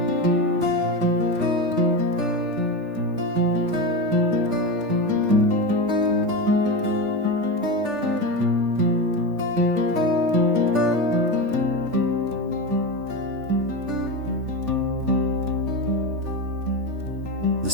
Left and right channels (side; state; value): left; late; 3.4 ms